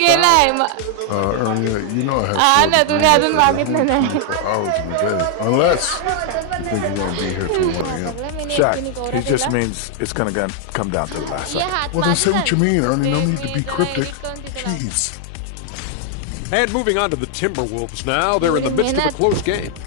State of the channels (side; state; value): both; different; correlation 0.00